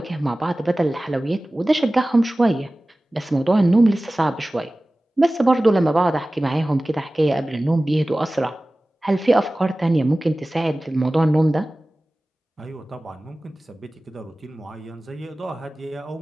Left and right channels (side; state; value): both; normal; correlation 0.97